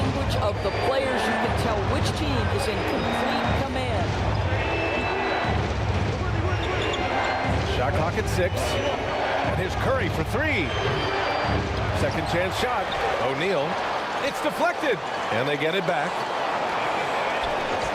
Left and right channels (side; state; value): both; identical; correlation 1.00